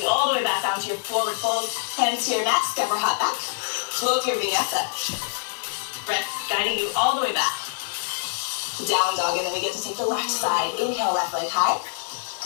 you all the way back down to your forward fold. Hands to your mat, step or hop back. Flow through your vinyasa. Breath guiding you all the way back. Down dog, and then we get to take the left side. Inhale, left leg high.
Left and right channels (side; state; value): right; silent; digital silence